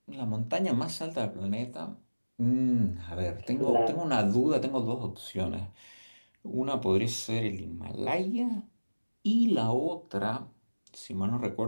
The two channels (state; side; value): inverted; both; correlation -1.00